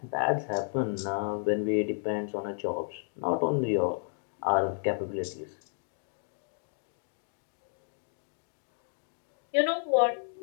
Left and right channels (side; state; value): right; silent; 56 dB below the other